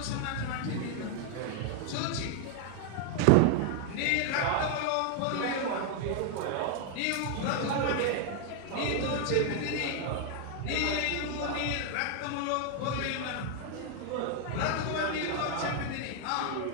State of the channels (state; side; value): different; both; correlation 0.00